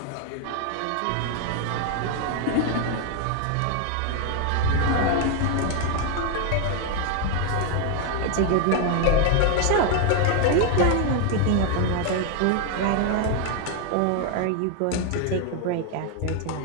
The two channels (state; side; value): different; both; correlation 0.01